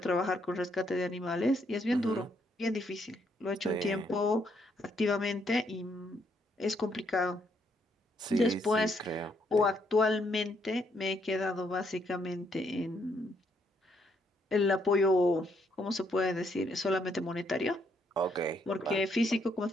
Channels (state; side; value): normal; both; correlation 0.73